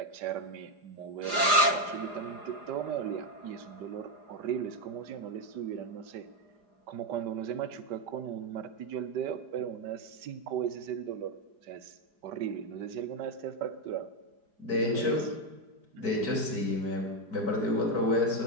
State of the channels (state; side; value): late; left; 4.9 ms